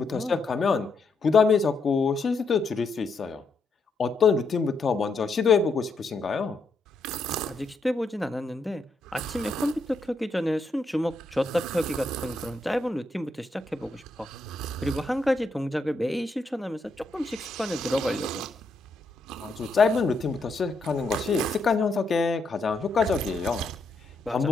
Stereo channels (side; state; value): right; quieter; 3.1 dB